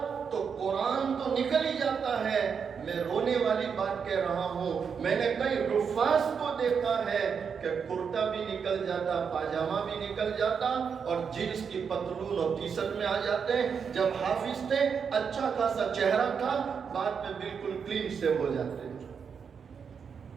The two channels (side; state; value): left; quieter; 6.5 dB